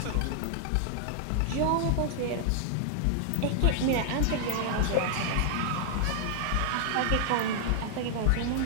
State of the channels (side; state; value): both; different; correlation 0.00